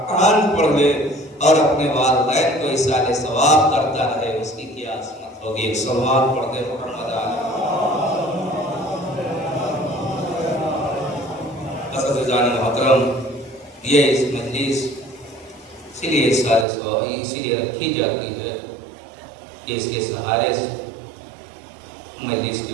پڑھ لے اور اپنے والدین کو ایصال ثواب کرتا رہے، اس کی کیا عظمت ہوگی۔ ایک صلوات پڑھ دے محمد عزیزان محترم، یہ اس مجلس اسی لیے ایصال ثواب اسی لیے رکھی جاتی ہے کہ اس کے سہارے سے، مجلس کے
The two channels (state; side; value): drops out; left; at 16.7 s